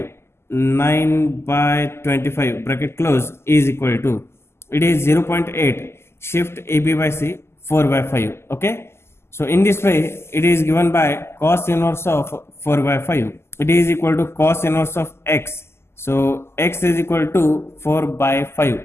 9 by 25 bracket close is equal to, it is 0.8, shift AB by C 4 by 5. Okay. So in this way it is given by cos inverse of 4 by 5. It is equal to cos inverse of x. So x is equal to 4 by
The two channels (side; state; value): right; late; 0.12 ms